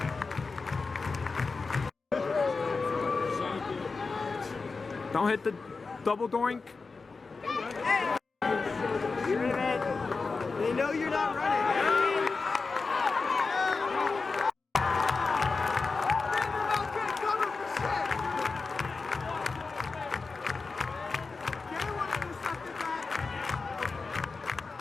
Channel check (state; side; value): quieter; right; 4.3 dB